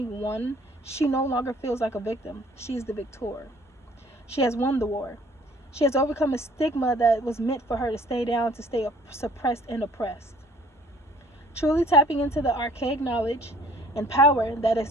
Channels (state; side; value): normal; both; correlation 0.55